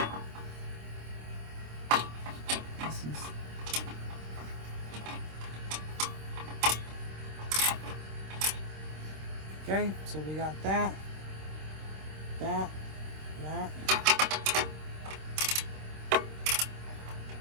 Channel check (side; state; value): left; late; 26 ms